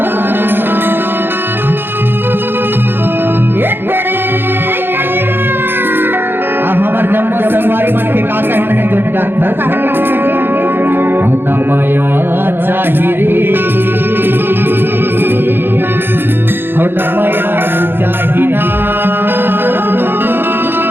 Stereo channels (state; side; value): late; left; 0.10 ms